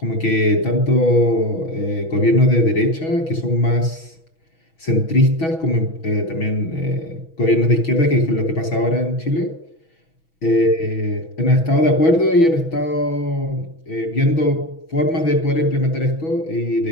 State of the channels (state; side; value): late; right; 6.2 ms